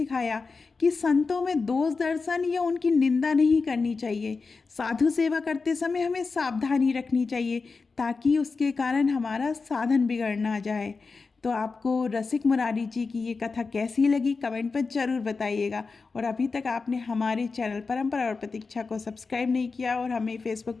कि संतों में दोष दर्शन या उनकी निंदा नहीं करनी चाहिए। साधु सेवा करते समय हमें सावधानी रखनी चाहिए ताकि उसके कारण हमारा साधन बिगड़ ना जाए। तो आपको रसिक मुरारी जी की ये कथा कैसी लगी कमेंट पर ज़रूर बताइएगा। और अभी तक आपने हमारे चैनल परंपरा और प्रतीक्षा को सब्सक्राइब नहीं किया और हमें फेसबुक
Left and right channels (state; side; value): quieter; right; 4.4 dB